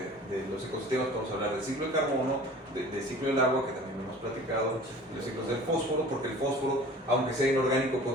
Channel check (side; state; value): both; normal; correlation 0.44